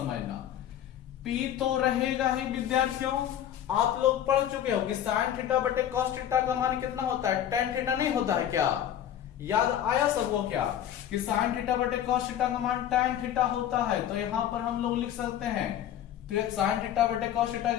p तो रहेगा ही विद्यार्थियों, आप लोग पढ़ चुके हो कि sin थीटा बटे cos थीटा का मान कितना होता है, tan थीटा नहीं होता है क्या, याद आया सबको क्या, कि sin थीटा बटे cos थीटा का मान tan थीटा होता है, तो यहां पर हम लोग लिख सकते हैं sin थीटा बटे cos थीटा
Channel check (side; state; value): right; quieter; 10.7 dB